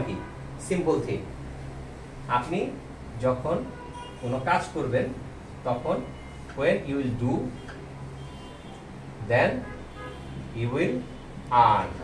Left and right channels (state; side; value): identical; both; correlation 1.00